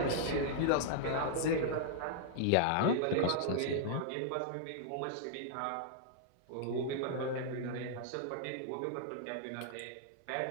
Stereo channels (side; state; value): both; different; correlation -0.01